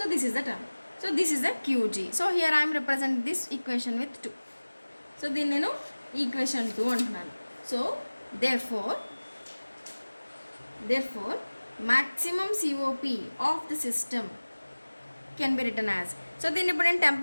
this is the term. So this is the QG. So here I'm represent this equation with 2. సో దీన్ని నేను ఈక్వేషన్ 2 అంటున్నాను. So therefore maximum COP of the system can be written as. So దీన్ని ఇప్పుడు నేను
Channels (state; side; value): inverted; both; correlation -1.00